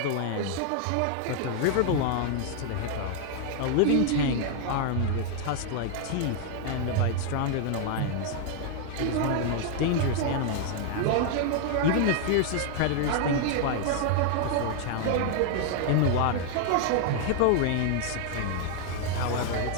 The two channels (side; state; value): both; different; correlation 0.00